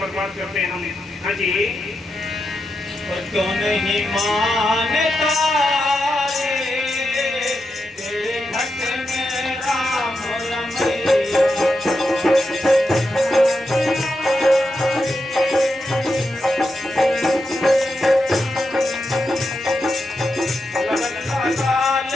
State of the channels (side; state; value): both; normal; correlation 0.87